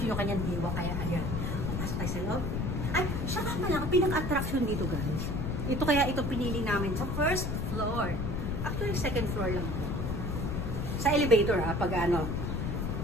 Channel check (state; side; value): noise; left; rumble, 1 dB below the sound